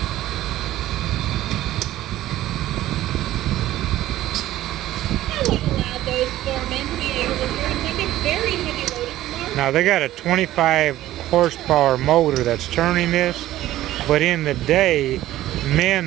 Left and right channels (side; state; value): left; quieter; 14.6 dB